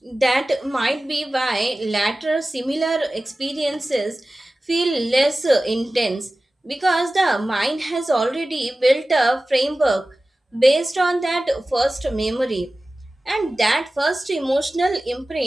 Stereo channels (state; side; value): normal; both; correlation 0.96